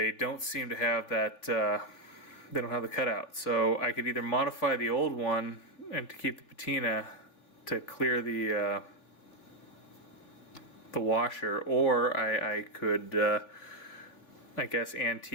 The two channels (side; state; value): right; late; 3.2 ms